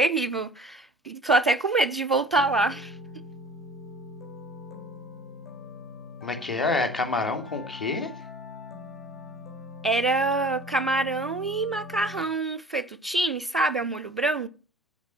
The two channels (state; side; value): normal; both; correlation 0.45